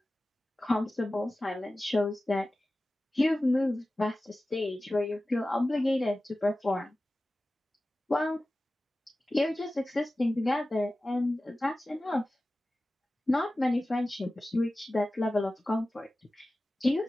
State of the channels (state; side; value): normal; both; correlation 0.96